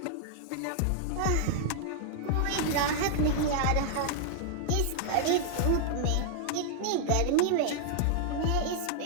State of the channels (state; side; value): different; both; correlation -0.01